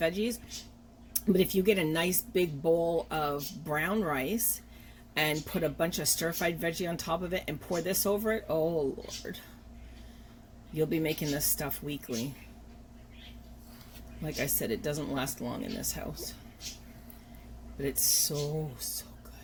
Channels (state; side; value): identical; both; correlation 1.00